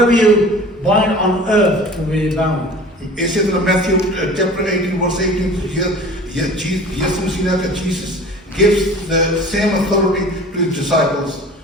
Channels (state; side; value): normal; both; correlation 0.42